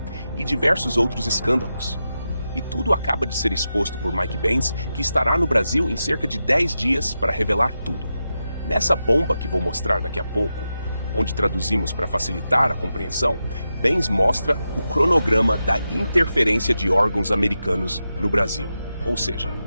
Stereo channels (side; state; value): both; inverted; correlation -0.89